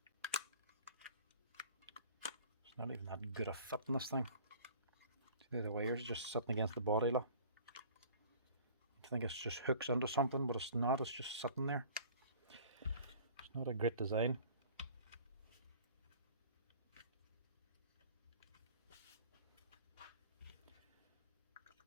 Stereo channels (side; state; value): both; inverted; correlation -0.47